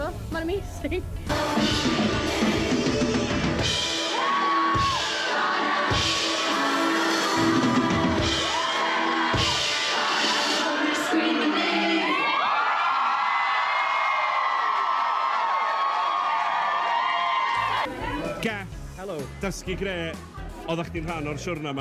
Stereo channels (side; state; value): both; identical; correlation 1.00